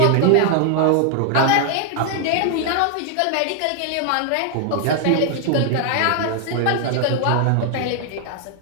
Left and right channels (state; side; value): different; both; correlation 0.00